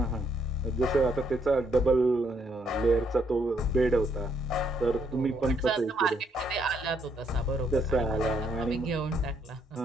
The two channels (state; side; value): normal; both; correlation 0.73